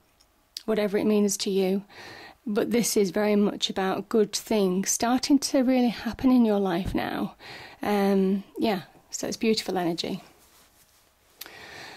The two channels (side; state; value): both; identical; correlation 1.00